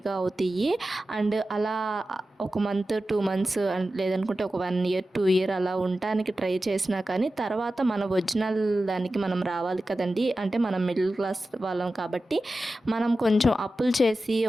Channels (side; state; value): both; normal; correlation 0.93